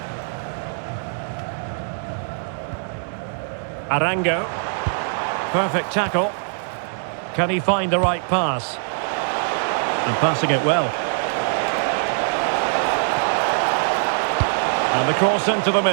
Arango. Perfect tackle. Can he find the right pass? And passing it well. And the cross into the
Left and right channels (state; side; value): silent; left; digital silence